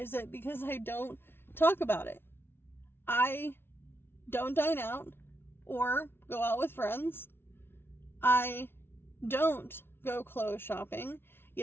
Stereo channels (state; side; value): late; right; 0.11 ms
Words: it because I don't talk about it. I don't dine out or go out with friends. I don't go clothes shopping.